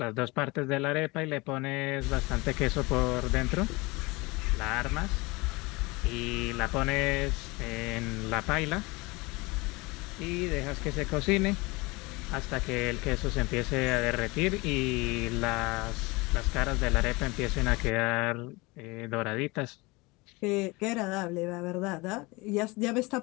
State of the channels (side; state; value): right; quieter; 24.3 dB